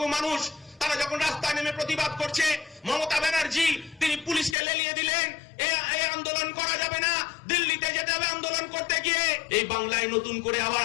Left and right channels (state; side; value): drops out; right; at 4.5 s